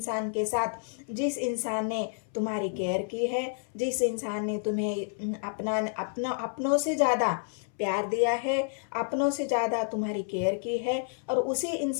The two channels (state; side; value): silent; right; 58 dB below the other